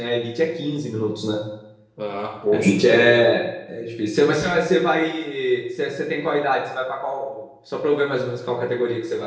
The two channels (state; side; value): identical; both; correlation 1.00